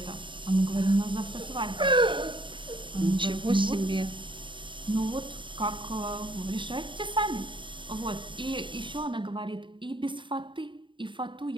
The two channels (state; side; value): late; left; 0.24 ms